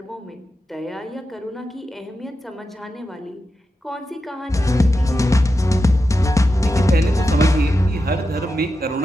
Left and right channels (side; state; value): both; normal; correlation 0.89